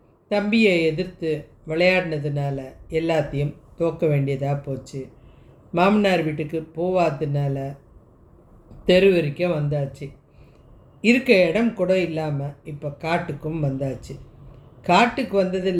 தம்பியை எதிர்த்து விளையாடினதுனால எல்லாத்தையும் தோக்க வேண்டியதாக போச்சு. மாமனார் வீட்டுக்கு போவாததுனால தெரு வரைக்கும் வந்தாச்சு. இருக்க இடம் கூட இல்லாமல் இப்போ காட்டுக்கும் வந்தாச்சு. காட்டுக்கு வந்தது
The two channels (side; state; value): both; identical; correlation 1.00